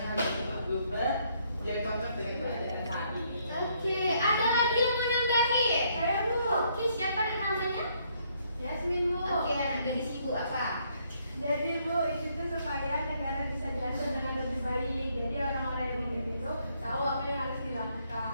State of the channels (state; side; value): inverted; both; correlation -0.70